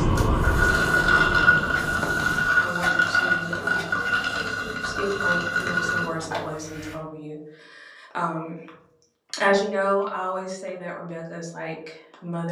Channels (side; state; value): both; identical; correlation 1.00